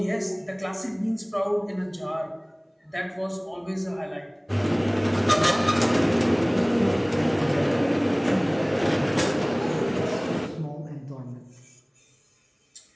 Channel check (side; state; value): both; identical; correlation 1.00